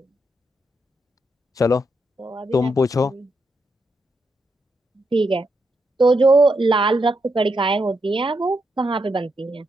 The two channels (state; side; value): normal; both; correlation 0.81